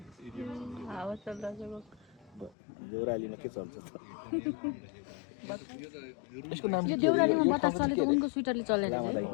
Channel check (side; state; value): right; drops out; at 2.5 s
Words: हावा चलिरहेको देउरालीमा के चल्छ त? यसको नाम यो देउरालीमा बतास चलेको उनको स्वेटरले चलेर